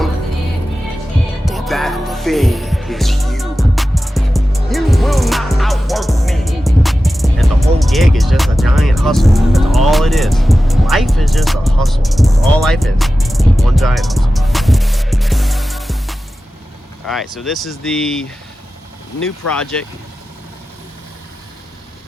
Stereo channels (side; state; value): both; normal; correlation 0.94